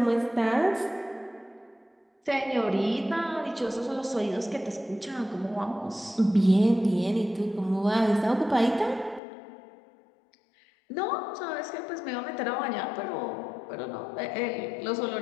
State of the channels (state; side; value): drops out; right; at 9.2 s